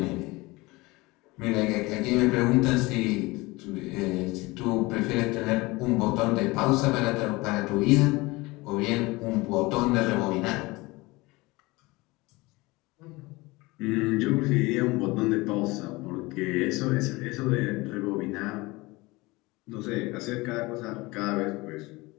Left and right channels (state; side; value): quieter; right; 22.5 dB